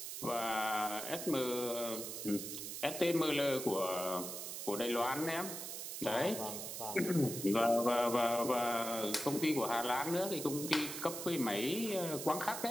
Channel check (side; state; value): right; noise; hiss, 7 dB below the sound